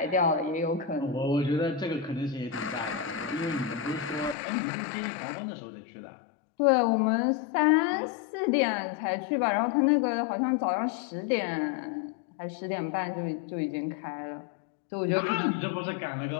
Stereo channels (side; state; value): right; drops out; at 4.4 s